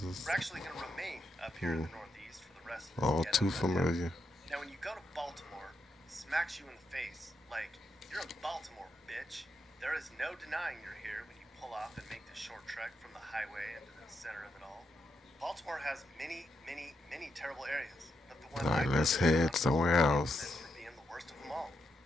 We're actually going to remain up here in the Northeast for the rest of this All ghetto too area. familiar. Now, when you go to Baltimore, it smacks you in the face like, you're in Baltimore, bitch. There is no denying you're here when you pull off and make the short trek from the highway into the center of it all. Baltimore has many, many, many terrible areas, but the one Alright, I let's visited head somewhere else. is for being the worst of them all.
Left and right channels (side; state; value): both; normal; correlation 0.82